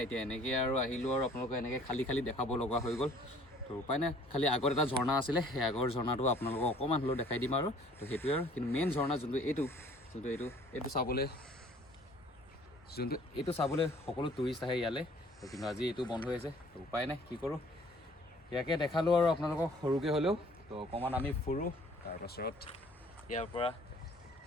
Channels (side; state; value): both; normal; correlation 0.55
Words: এতিয়া এনেকৈ আৰু আহিলোঁ আৰু আপোনালোকক এনেকৈ খালী দেখাব লগা হৈ গ'ল। তো উপায় নাই, খালী আগত এটা ঝৰ্ণা আছিলে, সেই আগৰ ঝৰ্ণাটো আপোনালোকক অকণমান হ'লেও দেখাই দিম আৰু। তো সেইটোৱে আৰু, কিন্তু মেইন ঝৰ্ণা যোনটো এইটো চাবলৈ সকলো টুৰিষ্ট আহে ইয়ালৈ। তো কিন্তু আজি এইটো বন্ধ হৈ আছে। তো উপায় নাই, কি কৰোঁ, ইয়াকে দেখালোঁ আৰু আপোনালোকক সৰুকৈ হ'লেও। তো অকণমান আমি ফুৰোঁ, তাৰপাছত ইয়াৰ পৰা